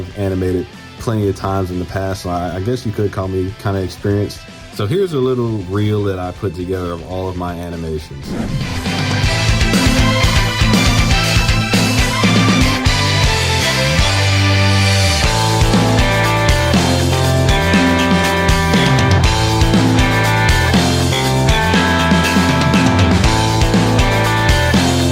animated plenty of times in the past, so I guess you could call me kind of experienced. So here's a little reel that I put together of all of my animations.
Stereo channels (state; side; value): identical; both; correlation 1.00